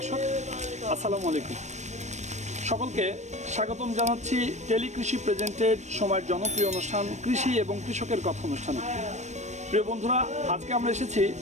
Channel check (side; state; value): left; late; 0.34 ms